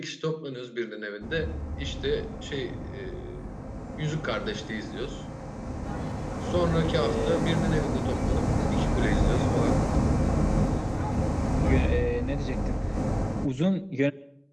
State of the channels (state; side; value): identical; both; correlation 1.00